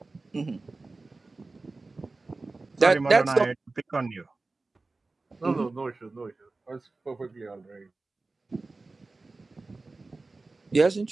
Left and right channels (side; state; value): left; quieter; 3.5 dB